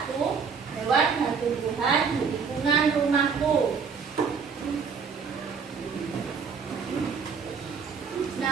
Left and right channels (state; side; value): quieter; left; 5.9 dB